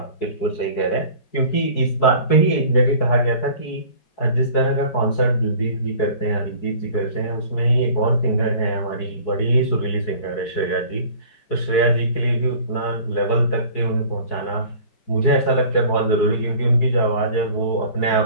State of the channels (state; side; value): late; right; 4.7 ms